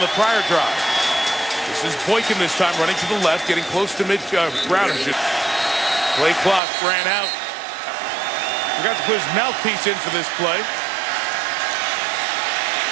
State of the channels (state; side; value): drops out; left; at 6.6 s